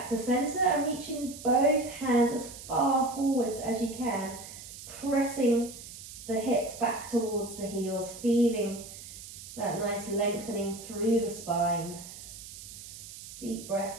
to center and reaching both hands as far forwards as you can, pressing the hips back towards the heels, feeling that nice lengthening through the spine. Deep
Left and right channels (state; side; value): noise; right; hiss, 13 dB below the sound